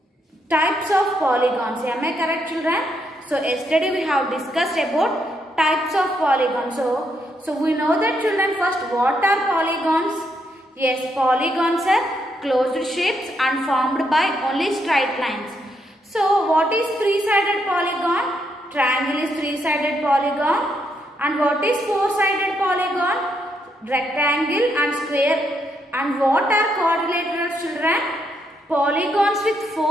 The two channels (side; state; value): both; normal; correlation 0.77